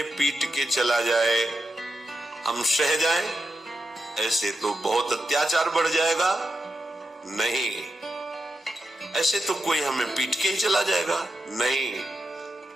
पीट के चला जाए, हम सह जाएं, ऐसे तो बहुत अत्याचार बढ़ जाएगा। नहीं, ऐसे तो कोई हमें पीट के ही चला जाएगा। नहीं,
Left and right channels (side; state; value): both; normal; correlation 0.87